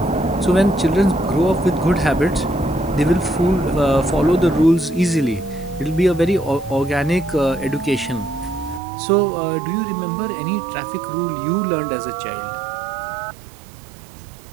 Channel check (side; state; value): left; drops out; at 8.8 s